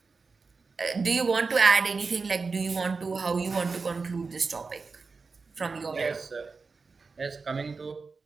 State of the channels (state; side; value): quieter; left; 4.5 dB